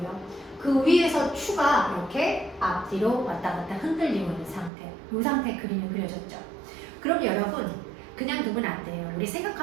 그 위에서 추가 이렇게 앞뒤로 왔다 갔다 흔들리고 있는 상태. 이 상태 그림이 그려졌죠. 그럼 여러분 그냥 두면 안 돼요. 우리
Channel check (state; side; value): drops out; left; at 4.7 s